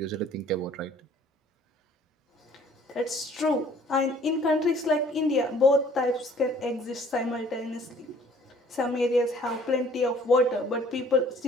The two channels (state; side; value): normal; both; correlation 0.55